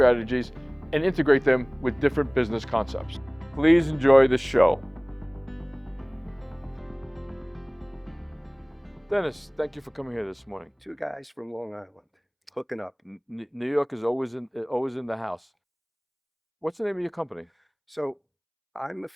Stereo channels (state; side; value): identical; both; correlation 1.00